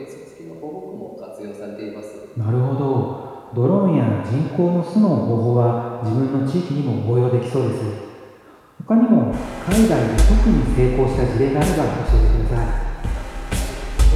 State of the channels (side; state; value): both; identical; correlation 1.00